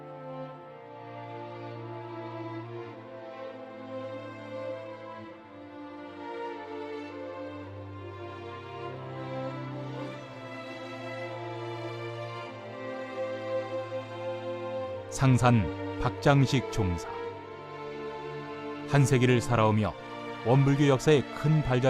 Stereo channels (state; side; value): identical; both; correlation 1.00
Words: 상산 박장식 종사. 한 세기를 살아오며 원불교 역사에 큰